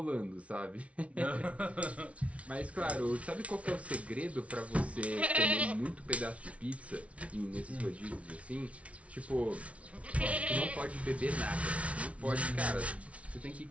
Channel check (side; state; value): left; late; 0.064 ms